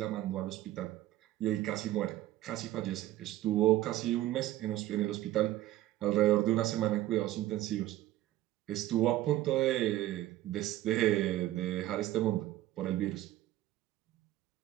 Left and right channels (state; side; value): quieter; left; 14.8 dB